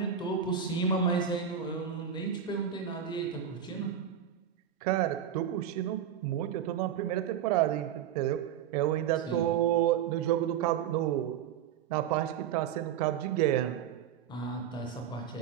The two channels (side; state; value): left; quieter; 9.1 dB